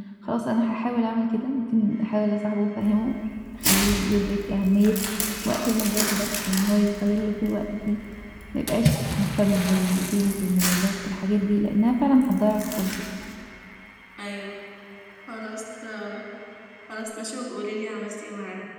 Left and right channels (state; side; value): identical; both; correlation 1.00